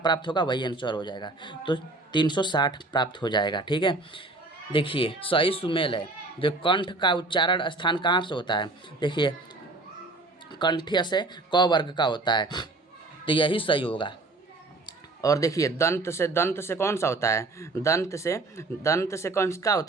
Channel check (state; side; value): quieter; left; 3.2 dB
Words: होगा, वही आंसर हो जाएगा, तो 360 प्राप्त हो जाएगा। ठीक है, देखिए सही सुमेल है। जो कंठ का उच्चारण स्थान कहाँ से होता है, देखिए कंठ्य से क वर्ग का होता है, तो यही सही होगा। और देखिए दंत से कौन सा होता है, दंत से कौन का